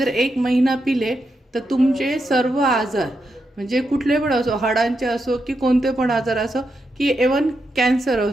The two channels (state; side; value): normal; both; correlation 0.84